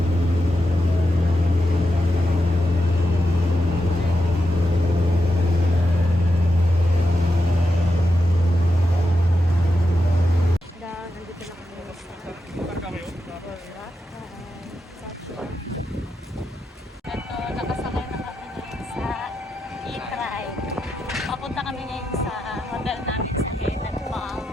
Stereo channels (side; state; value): both; normal; correlation 0.87